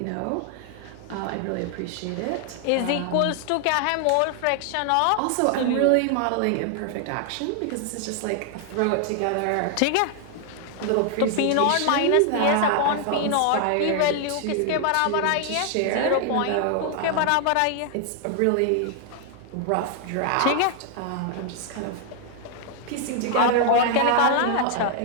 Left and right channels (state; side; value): different; both; correlation 0.00